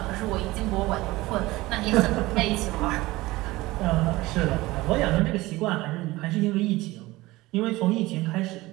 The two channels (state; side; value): quieter; left; 19.5 dB